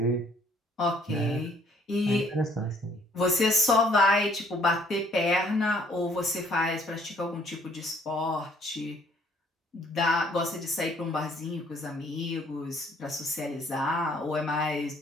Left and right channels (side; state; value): both; normal; correlation 0.62